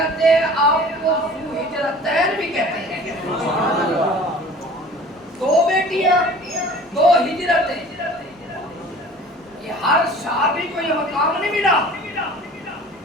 ہیں آپ کو ذوالہجرتین بھی کہتے ہیں. دو بیٹیاں دو ہجرتیں یہ ہر صحابی کو یہ مقام نہیں ملا.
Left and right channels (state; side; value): normal; both; correlation 0.45